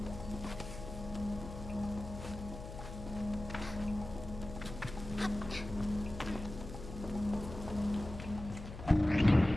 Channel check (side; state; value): left; noise; hum, 11 dB below the sound